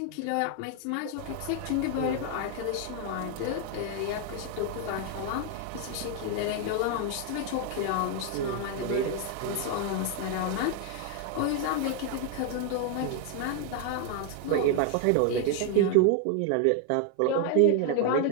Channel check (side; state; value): both; different; correlation 0.00